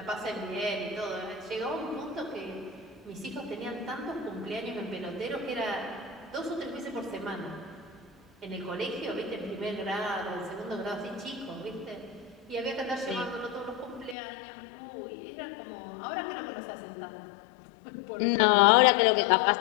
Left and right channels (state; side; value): drops out; right; at 14.2 s